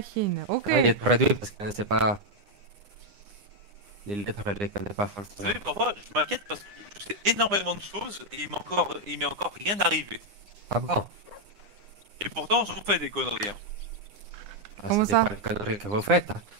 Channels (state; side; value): late; left; 9.8 ms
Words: Ok. Ah, il est traduit parce qu'on ne sait pas. Les lettres, elle les connaît pas Vous forcément. savez, parfois, je m'inquiète parce que je sais énormément de choses et il m'est encore rien arrivé. Ah bon? Et pourtant, j'en fais des conneries. Hein. Ah, Comment c'est ça? pas les conneries que vous faites. Hein.